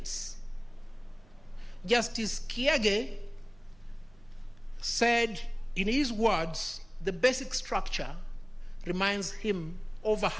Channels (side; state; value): right; noise; hum, 27 dB below the sound